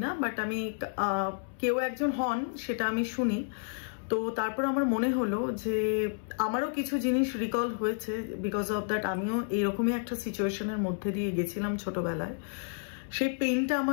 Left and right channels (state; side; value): silent; right; 57 dB below the other